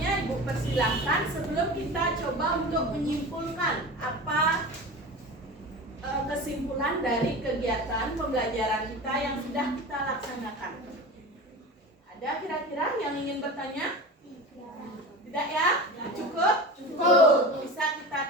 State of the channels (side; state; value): both; normal; correlation 0.31